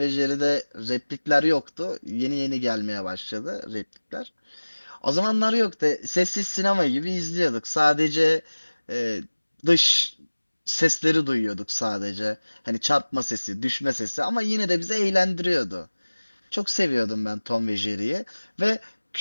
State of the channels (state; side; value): inverted; both; correlation -1.00